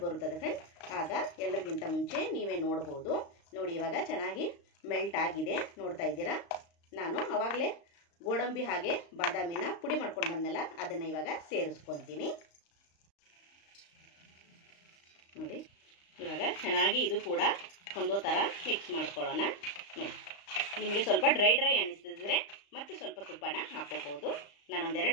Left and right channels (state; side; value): late; right; 35 ms